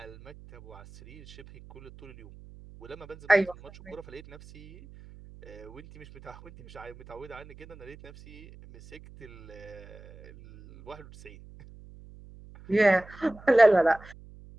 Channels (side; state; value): right; noise; hum, 19 dB below the sound